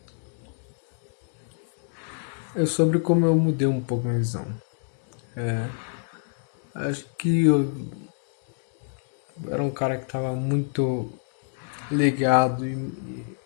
Sobre como eu mudei um pouco a minha visão. Acho que eu era um cara que estava muito ligado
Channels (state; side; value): silent; right; digital silence